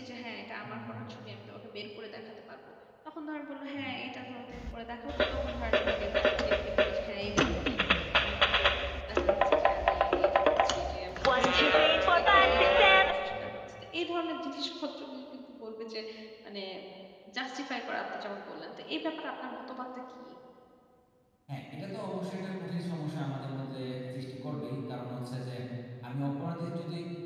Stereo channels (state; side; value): identical; both; correlation 1.00